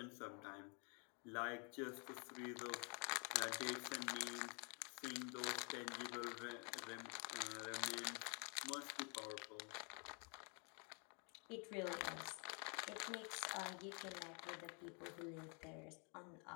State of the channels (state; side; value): quieter; right; 36.4 dB